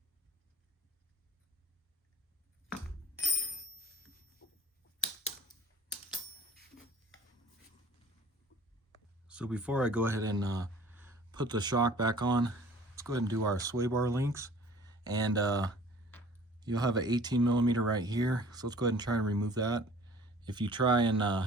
So before I go ahead and put the shock back on, let's go ahead and do our sway bar links. And you'll have an 18mm right here. So let's go ahead and try and remove that. If you try and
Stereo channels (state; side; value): normal; both; correlation 0.49